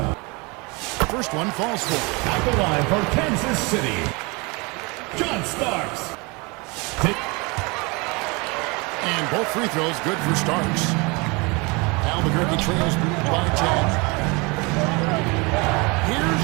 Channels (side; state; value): left; quieter; 27.8 dB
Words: First one falls for. At the line for Kansas City. John Starks. And both free throws good for Starks. Albuquerque trails by 10. Here's